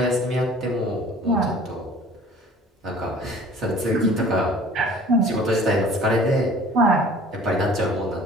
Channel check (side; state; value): both; normal; correlation 0.49